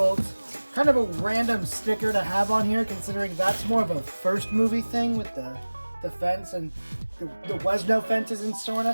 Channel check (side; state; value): both; inverted; correlation -1.00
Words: Kind of a random sticker to have on here, considering that's more of a first movie thing with the fence, and there was no fences in